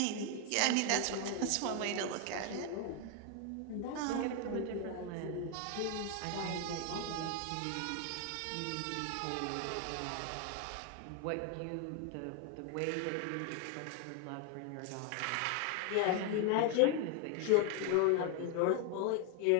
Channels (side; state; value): both; different; correlation 0.01